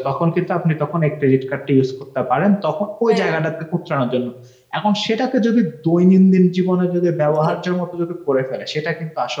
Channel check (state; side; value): identical; both; correlation 1.00